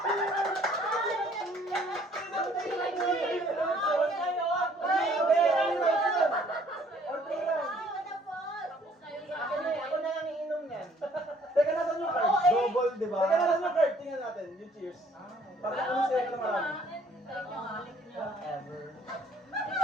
Ako na, ako na lang iinom niyan. Teka, nasan yung card? Double, di ba? Teka, nasan yung card? Tingnan natin, yung cheers. Para kung sila ka na marami. Whatever.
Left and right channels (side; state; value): both; normal; correlation 0.60